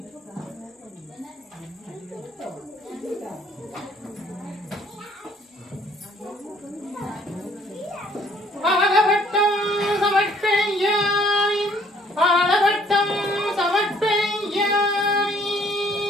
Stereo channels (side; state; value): both; normal; correlation 0.61